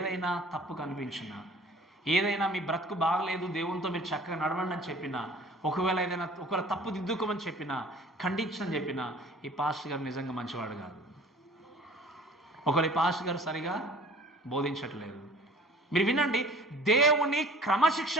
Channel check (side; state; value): both; normal; correlation 0.48